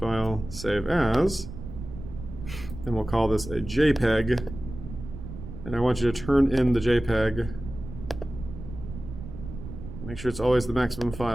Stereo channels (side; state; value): right; noise; rumble, 11 dB below the sound